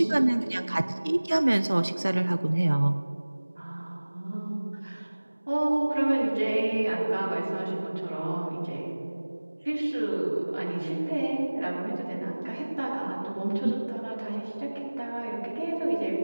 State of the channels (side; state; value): both; inverted; correlation -1.00